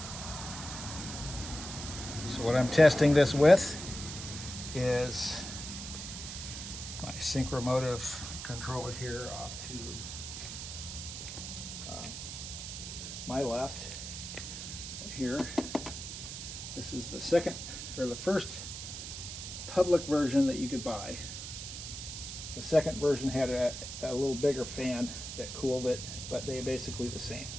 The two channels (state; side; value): noise; right; hiss, 8 dB below the sound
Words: So what I'm testing this with is my synchromotive controller here off to my left here. This is the second, or the first public version that you could buy. The second version had a little bigger fan that cooled it, but they're basically the same.